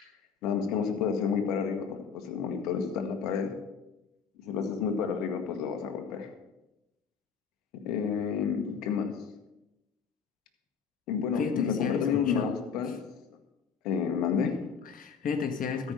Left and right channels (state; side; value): quieter; right; 6.4 dB